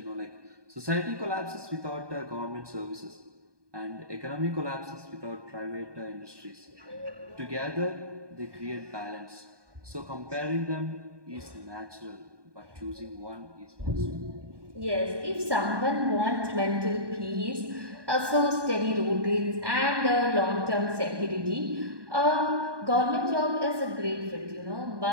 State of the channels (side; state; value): left; late; 1.2 ms